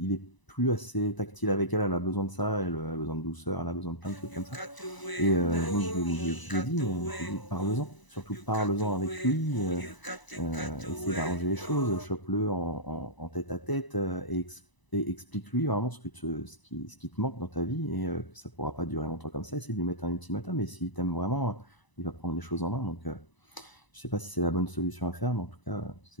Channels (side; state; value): right; late; 1.0 ms